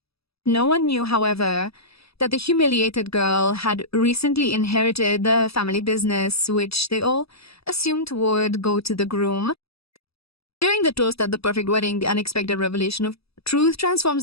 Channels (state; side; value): late; right; 0.77 ms